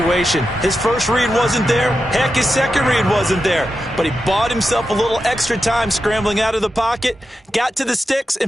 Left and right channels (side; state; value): both; normal; correlation 0.89